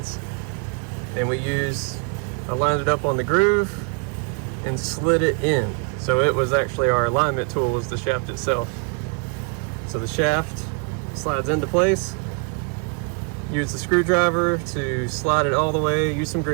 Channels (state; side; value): quieter; left; 37.3 dB